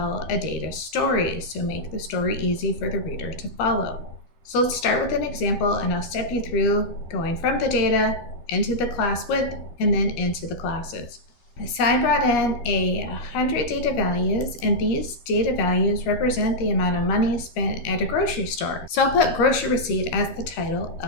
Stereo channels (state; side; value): late; right; 13 ms